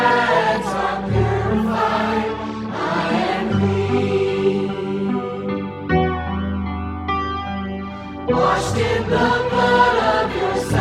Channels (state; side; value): identical; both; correlation 1.00